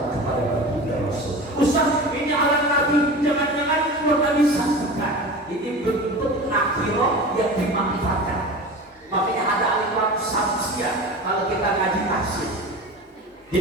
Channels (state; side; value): normal; both; correlation 0.33